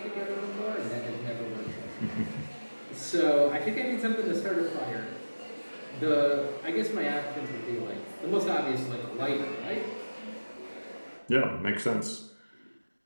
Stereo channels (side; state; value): both; inverted; correlation -1.00